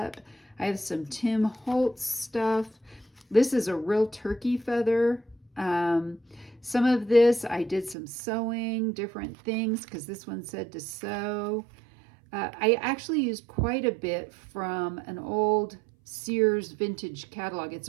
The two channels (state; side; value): drops out; left; at 8.0 s